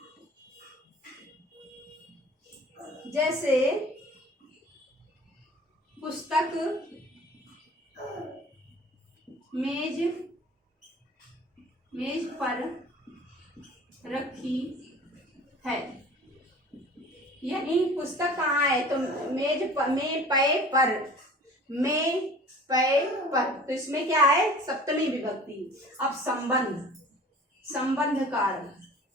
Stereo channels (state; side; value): normal; both; correlation 0.44